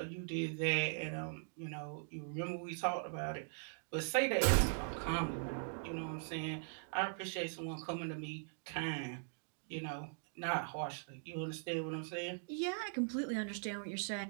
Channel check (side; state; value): left; silent; digital silence